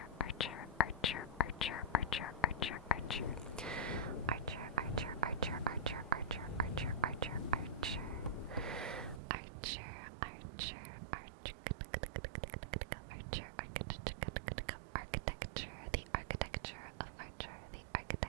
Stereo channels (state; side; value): drops out; left; at 9.2 s